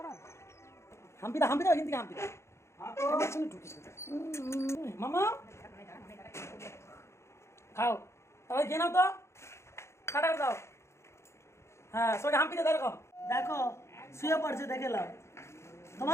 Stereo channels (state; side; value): late; right; 0.13 ms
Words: হাম্পি দাও, হাম্পি দাও, এখান থেকে হাম্পি দাও। আমার সঙ্গে ঢুকিস না। মামা খাও, তাহলে খেয়ে নাও তো, টাটা করে দাও। হ্যাঁ সবাই হাম্পি দাও, দেখো দেখো শুয়ে পড়ছে, দেখে নাও।